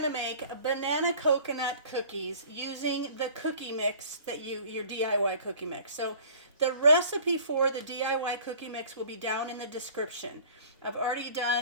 to make banana coconut cookies using the cookie mix that your DIY cookie mix. So the recipe for the DIY cookie mix will be down in the description. I've already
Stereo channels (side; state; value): both; inverted; correlation -0.48